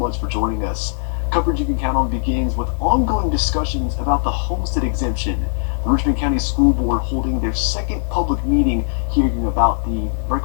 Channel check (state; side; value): silent; right; digital silence